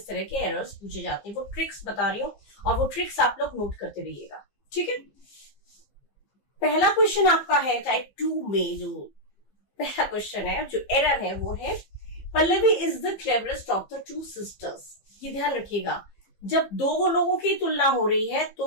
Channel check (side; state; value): right; late; 15 ms